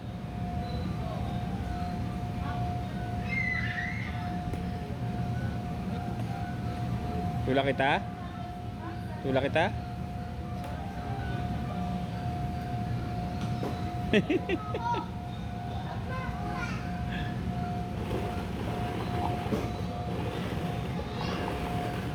Tulak kita? Tulak kita?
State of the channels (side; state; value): both; identical; correlation 1.00